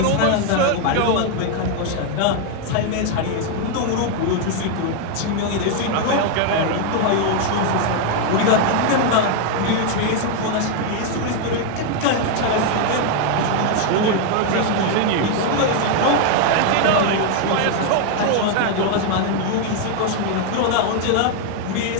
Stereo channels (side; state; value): both; different; correlation 0.00